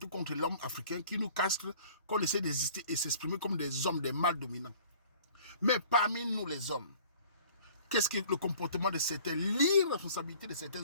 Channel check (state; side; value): inverted; both; correlation -0.50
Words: contre l'homme africain, qui nous castrent, qu'on essaie d'exister et s'exprimer comme des hommes, des mâles dominants. Mais parmi nous les hommes, qu'est-ce que le comportement de certains, l'irresponsabilité de